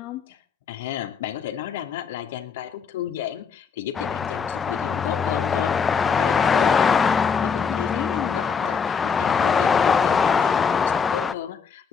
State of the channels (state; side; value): quieter; right; 6.1 dB